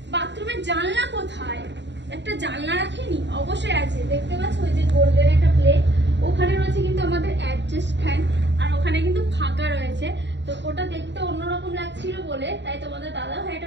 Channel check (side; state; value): left; late; 0.52 ms